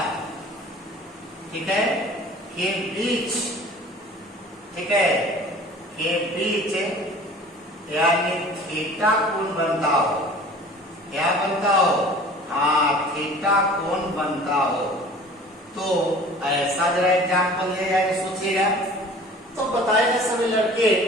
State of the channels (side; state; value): both; normal; correlation 0.45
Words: ठीक है, के बीच, ठीक है, के बीच यानी थीटा कोण बनता हो, क्या बनता हो हाँ थीटा कोण बनता हो, तो ऐसा जरा एग्जाम्पल ले जाके सोचिएगा। तो बताएंगे सभी लड़के